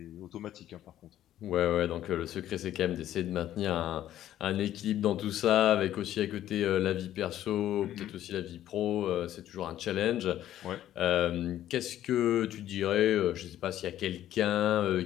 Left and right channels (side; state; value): right; quieter; 12.3 dB